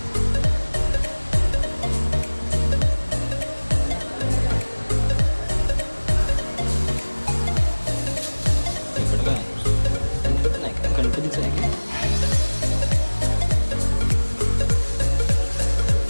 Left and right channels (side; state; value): both; inverted; correlation -1.00